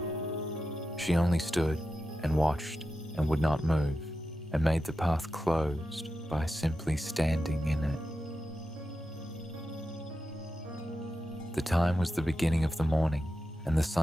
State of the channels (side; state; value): both; normal; correlation 0.90